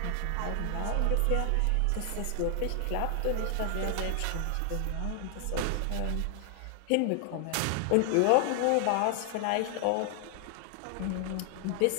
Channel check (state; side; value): different; both; correlation 0.00